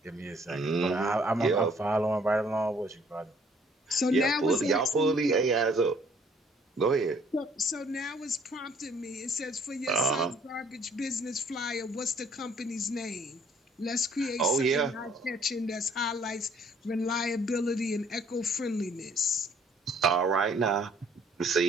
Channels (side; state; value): both; normal; correlation 0.61